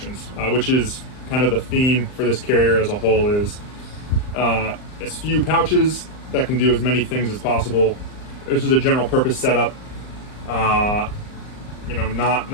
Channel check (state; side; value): late; right; 39 ms